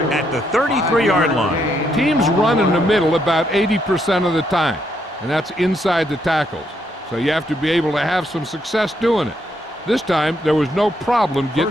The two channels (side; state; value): both; normal; correlation 0.75